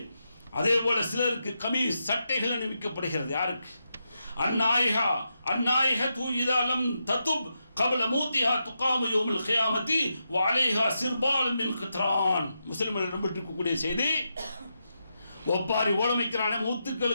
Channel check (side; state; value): both; inverted; correlation -0.85